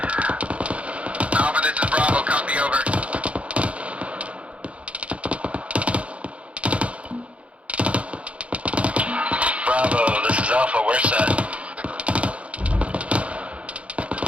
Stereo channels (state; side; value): late; left; 0.062 ms